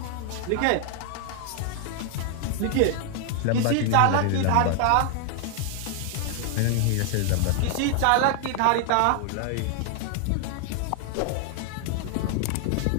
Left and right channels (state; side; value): different; both; correlation 0.00